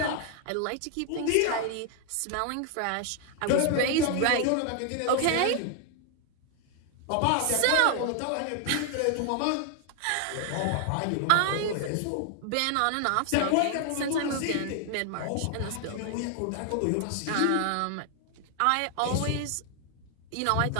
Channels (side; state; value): both; different; correlation 0.00